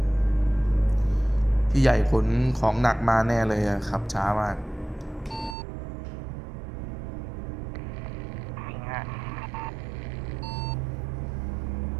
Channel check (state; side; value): drops out; left; at 5.6 s